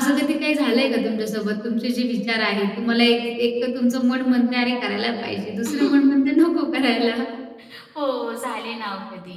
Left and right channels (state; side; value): identical; both; correlation 1.00